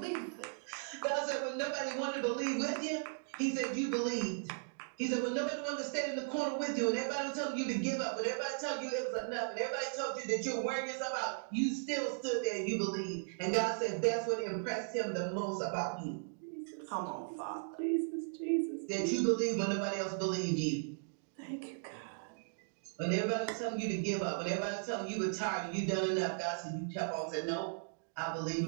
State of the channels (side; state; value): left; silent; digital silence